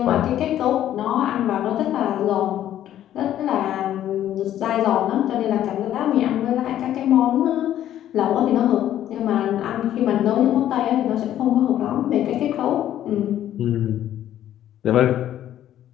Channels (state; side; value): quieter; right; 11.8 dB